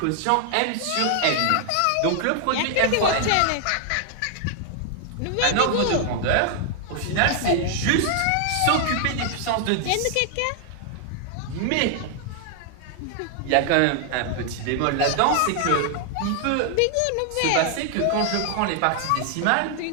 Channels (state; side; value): different; both; correlation 0.00